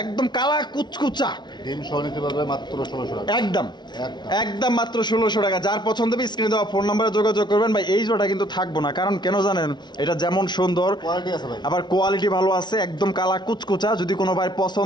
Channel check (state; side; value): late; right; 0.21 ms